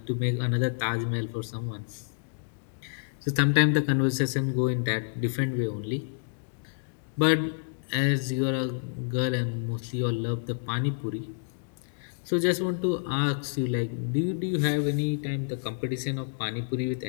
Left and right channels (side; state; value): right; silent; digital silence